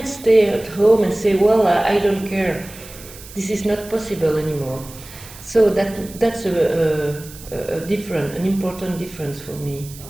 stay at home and say, well, I don't care. This is not possible anymore. So that's an important difference for me.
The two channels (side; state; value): right; noise; hiss, 17 dB below the sound